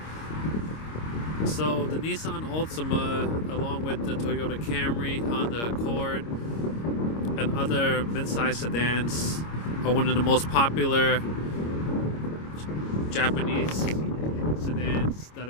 So the Nissan Altima, along with the Toyota Camry, Honda Accord, and other mid-size sedans, are one of the most popular Japanese sedans that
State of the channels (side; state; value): right; late; 26 ms